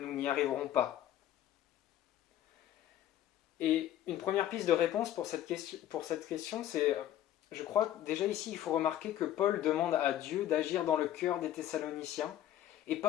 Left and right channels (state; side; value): quieter; right; 12.2 dB